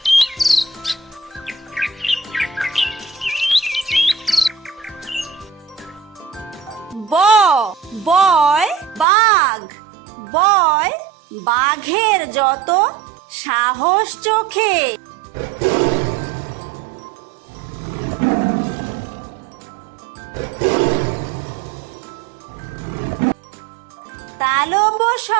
বয় বাঘ বয় বাঘের যত সাহস চোখে।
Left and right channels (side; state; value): left; drops out; at 9.1 s